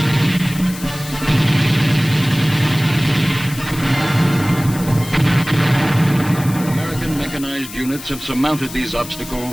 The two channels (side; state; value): left; noise; hiss, 13 dB below the sound